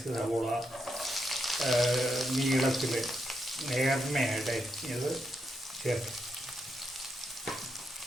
സവോള നീളത്തിൽ നേർമയായിട്ട് അരിഞ്ഞത് ചേർത്ത്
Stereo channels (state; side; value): normal; both; correlation 0.82